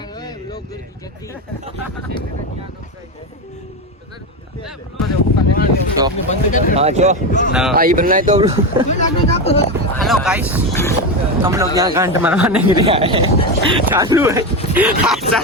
हेलो गाइस, हम लोग यहाँ घंट मरवाने के लिए आए हैं. चालू है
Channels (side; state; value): both; normal; correlation 0.15